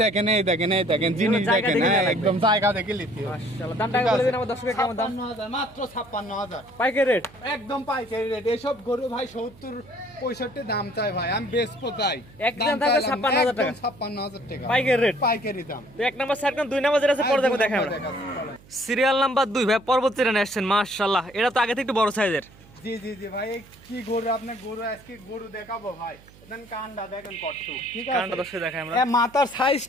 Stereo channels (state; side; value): noise; right; hum, 24 dB below the sound